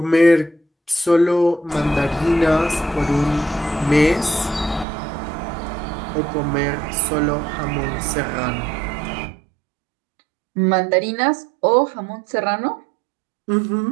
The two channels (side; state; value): left; drops out; at 4.9 s